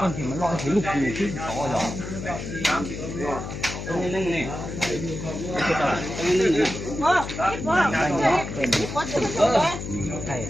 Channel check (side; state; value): left; noise; hum, 7 dB below the sound